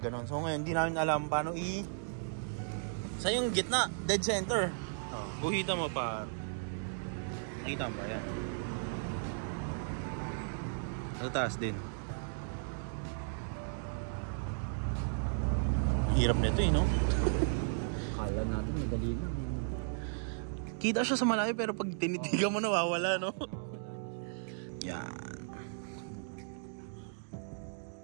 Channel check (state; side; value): silent; left; digital silence